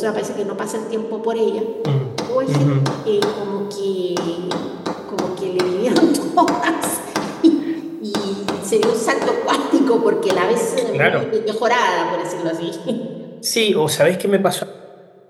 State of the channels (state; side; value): identical; both; correlation 1.00